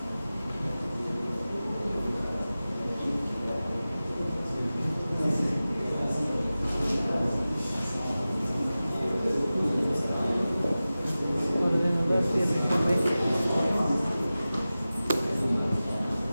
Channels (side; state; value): both; inverted; correlation -0.96